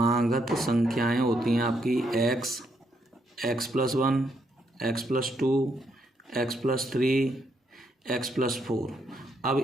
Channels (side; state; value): both; normal; correlation 0.76